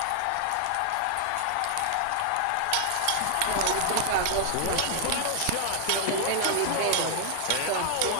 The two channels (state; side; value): different; both; correlation 0.00